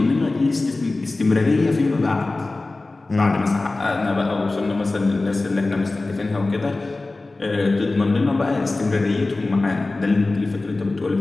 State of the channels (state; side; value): quieter; right; 3.2 dB